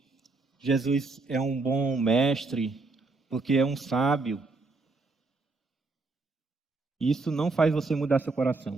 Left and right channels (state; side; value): quieter; left; 3.6 dB